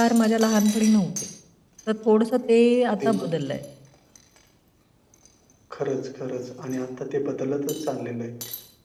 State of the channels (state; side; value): identical; both; correlation 1.00